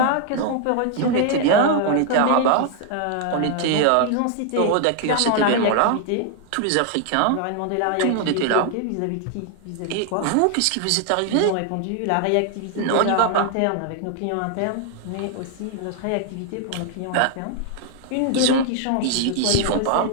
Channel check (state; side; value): different; both; correlation 0.00